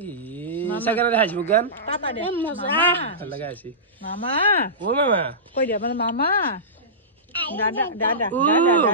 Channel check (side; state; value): both; normal; correlation -0.19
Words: চাগে হাসিব গান ভাল লগা আছে মামা ও মামা কৈ দিয়া মানে মামা দাদা দাদা ও